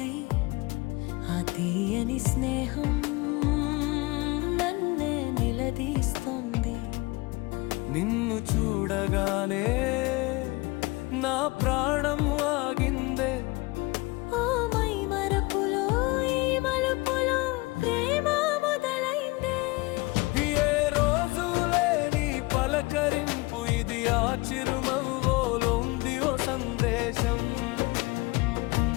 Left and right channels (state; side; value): quieter; right; 23.9 dB